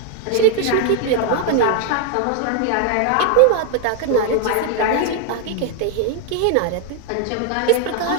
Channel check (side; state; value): both; different; correlation 0.00